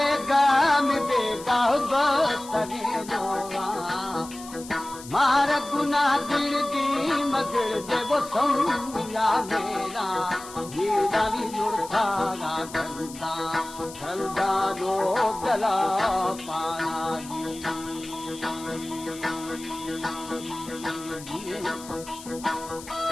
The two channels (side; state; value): left; noise; hiss, 16 dB below the sound